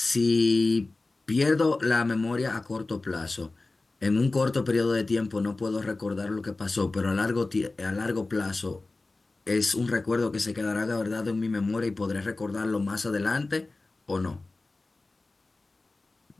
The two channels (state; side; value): quieter; right; 3.3 dB